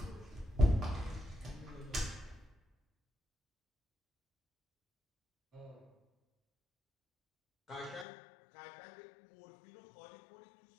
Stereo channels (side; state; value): right; drops out; at 8.1 s